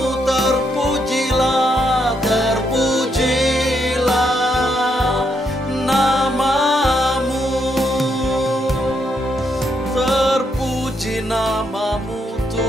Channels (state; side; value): normal; both; correlation 0.77